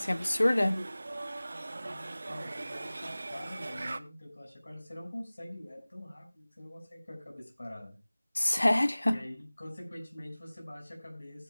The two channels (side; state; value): both; inverted; correlation -0.99